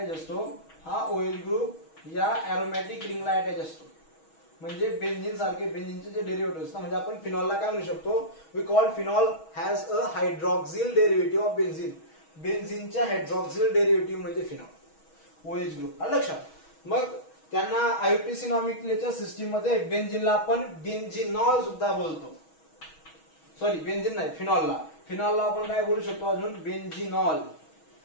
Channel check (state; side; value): late; right; 6.3 ms